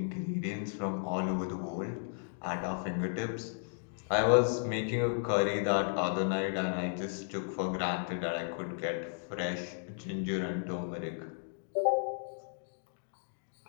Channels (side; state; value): right; silent; digital silence